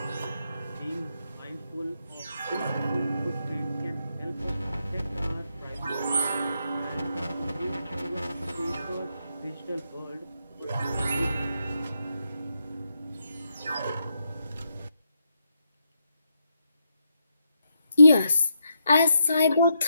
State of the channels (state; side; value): inverted; both; correlation -0.82